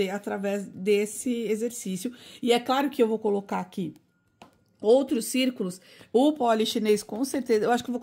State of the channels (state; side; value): identical; both; correlation 1.00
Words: através desse exercício. E é claro que eu vou colocar aqui outros círculos, o polichinês com certeza, eu acho que eu vou